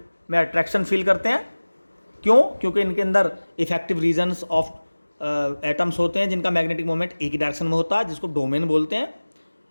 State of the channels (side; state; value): both; inverted; correlation -1.00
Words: में अट्रैक्शन फील करते हैं। क्यों, क्योंकि इनके अंदर इफेक्टिव रीजन्स ऑफ एटम्स होते हैं जिनका मैग्नेटिक मोमेंट एक ही डायरेक्शन में होता है, जिसको डोमेन बोलते हैं।